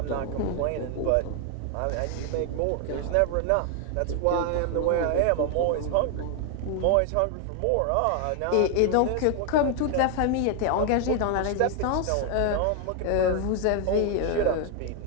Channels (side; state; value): both; different; correlation 0.00